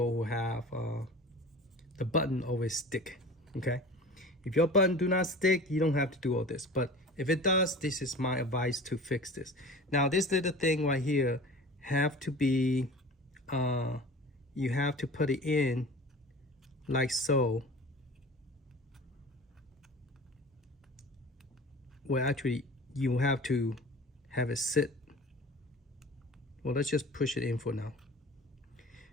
who have the button always stick, okay? If your button do not stick, you don't have to do all this. But if it does, this is my advice to fix this. Now, this little thing right here have to be, you have to put it in like so. Well, actually, you have to have it sit. Well, let's just push it in for now.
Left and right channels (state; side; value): normal; both; correlation 0.39